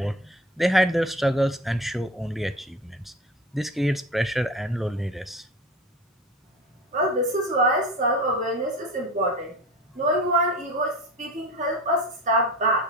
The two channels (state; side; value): normal; both; correlation 0.33